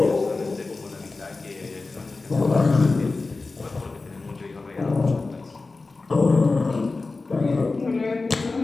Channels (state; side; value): quieter; right; 3.7 dB